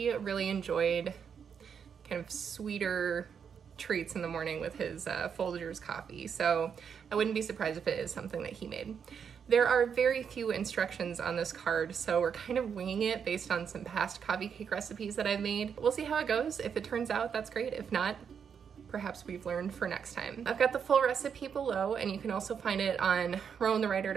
really enjoyed kind of sweeter treats in the morning with his Folgers coffee, so I wouldn't be surprised if it is something that he made. There are very few instructions on this card, so we're kind of winging it based on some past coffee cake recipes that I've made. We'll see how it goes. If it turns out, that's great. If not, perhaps we've learned for next time. I've got the full recipe below, and you can also find it on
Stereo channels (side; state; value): left; quieter; 7.2 dB